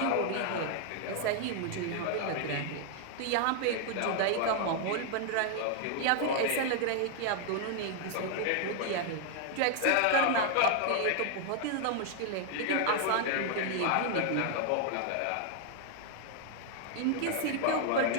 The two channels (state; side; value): different; both; correlation 0.00